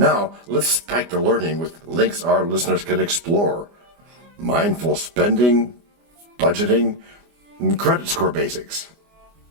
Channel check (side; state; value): left; late; 24 ms